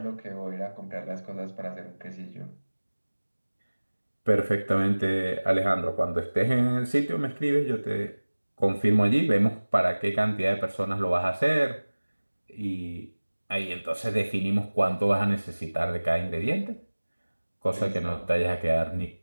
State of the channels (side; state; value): both; inverted; correlation -1.00